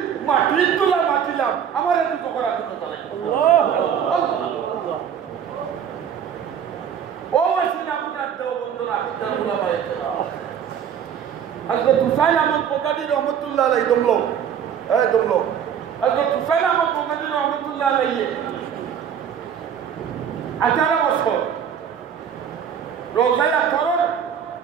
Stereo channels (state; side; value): quieter; left; 8.4 dB